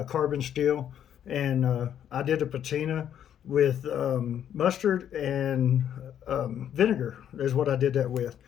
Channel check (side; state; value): right; quieter; 9.8 dB